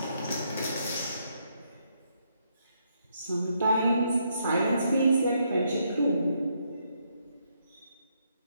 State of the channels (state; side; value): inverted; both; correlation -0.76